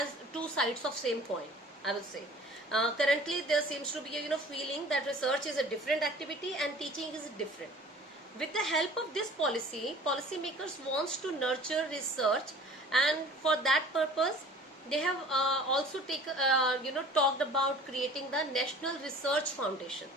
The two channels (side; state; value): both; normal; correlation 0.46